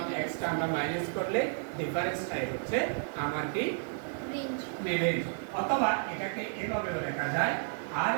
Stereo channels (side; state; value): left; silent; 56 dB below the other